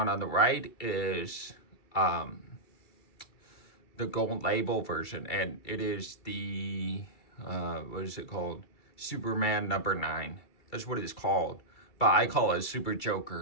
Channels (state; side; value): late; right; 2.3 ms